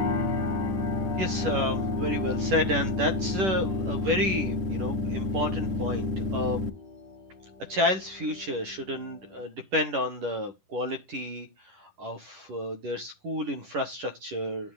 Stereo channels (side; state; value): left; late; 10 ms